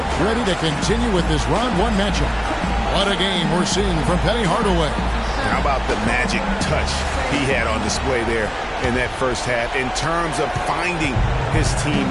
ready to continue with this round 1 matchup. What a game we're seeing from Penny Hardaway. How about the magic touch he had on display there in that first half in terms of finding his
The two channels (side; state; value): both; identical; correlation 1.00